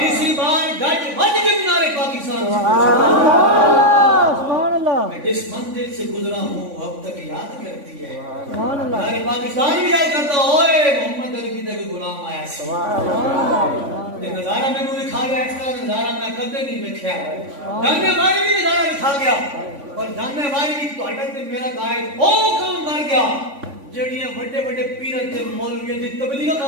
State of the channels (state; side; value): late; left; 3.5 ms